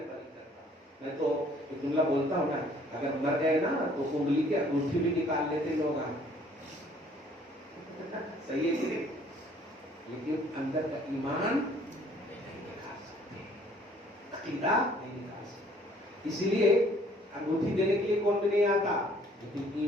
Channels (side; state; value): both; normal; correlation 0.59